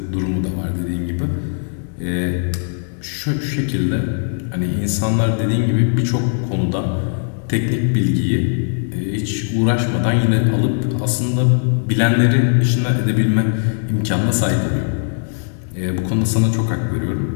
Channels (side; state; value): right; silent; digital silence